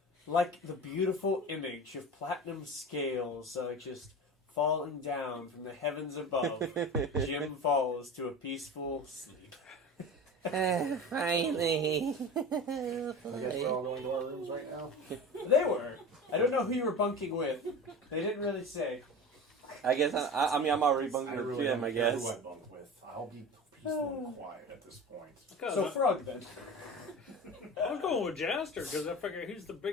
like the beautiful image of platinum scales just falling down from the heavens above, Jim falls to a peaceful sleep. Finally. I guess we're all going to our rooms right now. They were. I don't know who you were bunking with. They didn't really say. I guess I'm already bunking with really Jim, don't I care guess. who I bunk with. I'll be peaceful and quiet at this point. So Frug then. I'm going with Jaster because I figure he's the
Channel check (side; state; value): both; normal; correlation 0.32